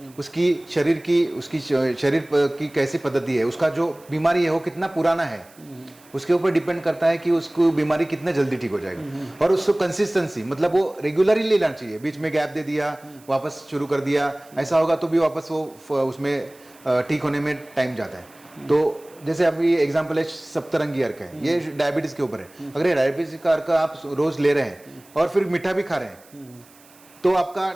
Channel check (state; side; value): noise; right; hiss, 26 dB below the sound